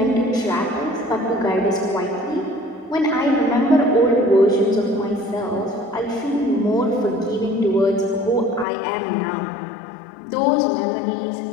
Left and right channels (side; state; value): right; drops out; at 8.7 s